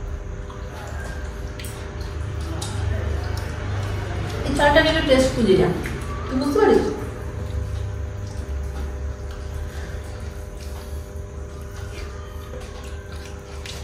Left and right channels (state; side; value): identical; both; correlation 1.00